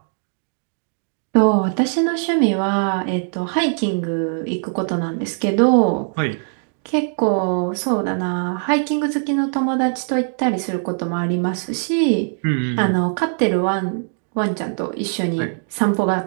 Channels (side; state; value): left; silent; digital silence